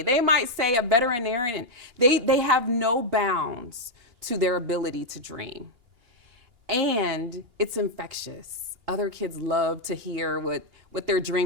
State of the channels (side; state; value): left; late; 2.8 ms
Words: They might say a veterinarian. They have no bounds to their ability to dream. And it's infectious. Other kids love to hear what they're